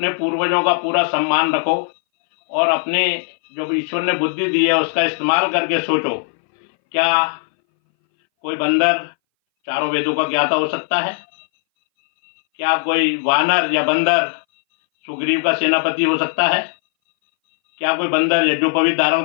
पूर्वजों का पूरा सम्मान रखो और अपने जो ईश्वर ने बुद्धि दी है उसका इस्तेमाल करके सोचो, क्या कोई बंदर चारों वेदों का ज्ञाता हो सकता है? क्या कोई वानर या बंदर सुग्रीव का सेनापति हो सकता है? क्या कोई बंदर यज्ञोपवीत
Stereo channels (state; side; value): silent; right; 62 dB below the other